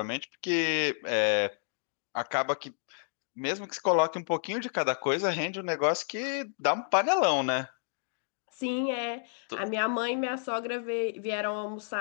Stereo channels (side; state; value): right; silent; digital silence